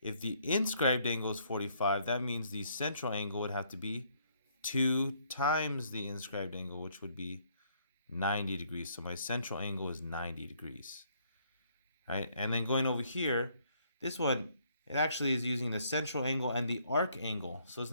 If the inscribed angle is 45, that means the central angle would have to be 2 times the inscribed angle, which would be 90 degrees. So my central angle is 90 degrees. Right? And then going over here, this one, it actually is using the central angle and the arc angle. So it's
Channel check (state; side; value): inverted; both; correlation -0.67